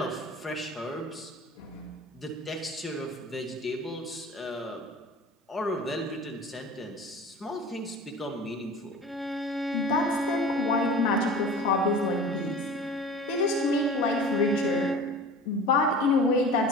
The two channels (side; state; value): both; normal; correlation 0.39